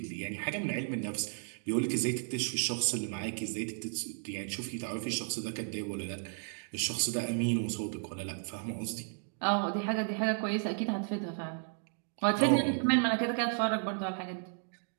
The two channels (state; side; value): silent; left; 55 dB below the other